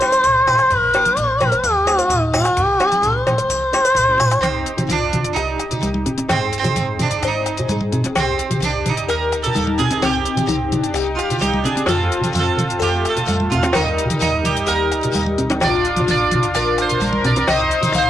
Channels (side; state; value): left; noise; rumble, 20 dB below the sound